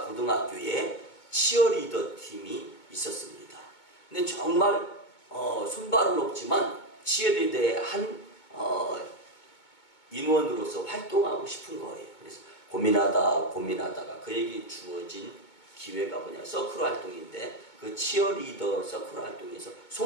고등학교에 치어리더 팀이 있었습니다. 근데 정말 손발은 없지만 치어리더의 한 인원으로서 활동하고 싶은 거예요. 그래서 고민하다가 그에게 주어진 기회가 뭐냐, 서클 활동인데, 그 치어리더 서클 활동에서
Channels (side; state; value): right; late; 2.2 ms